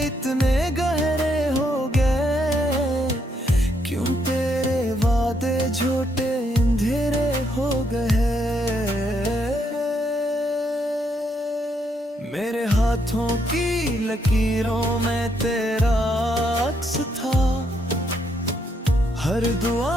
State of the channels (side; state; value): both; normal; correlation 0.75